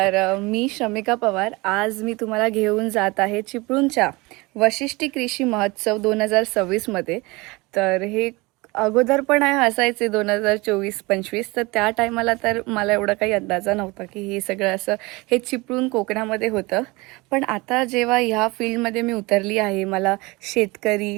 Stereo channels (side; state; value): left; quieter; 24.0 dB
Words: मी शमिका पवार. आज मी तुम्हाला घेऊन जात आहे चिपळूणच्या वशिष्ठी कृषी महोत्सव 2026मध्ये. तर हे अगोदर पण असायचे 2024-25, तर त्या टायमाला तर मला एवढा काही अंदाजा नव्हता की हे सगळं असं हे चिपळूण कोकणामध्ये होतं. पण आता जेव्हा ह्या फील्डमध्ये मी उतरली आहे, मला शेतकरी,